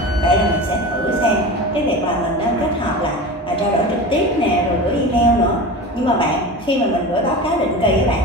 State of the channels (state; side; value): normal; both; correlation 0.30